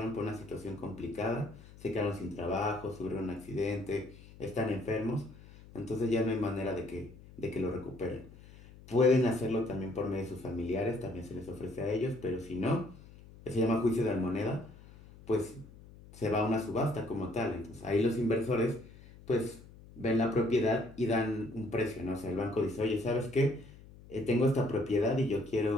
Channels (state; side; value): noise; left; hum, 20 dB below the sound